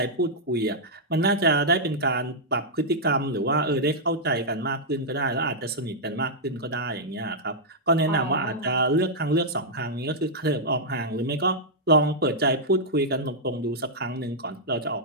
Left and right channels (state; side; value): normal; both; correlation -0.07